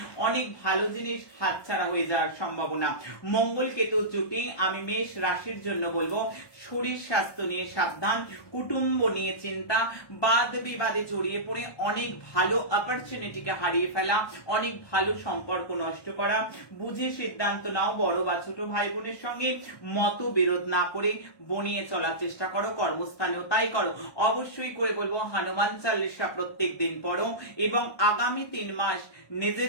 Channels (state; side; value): late; right; 1.2 ms